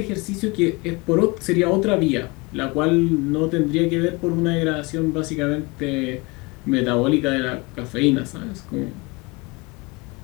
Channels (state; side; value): quieter; right; 26.2 dB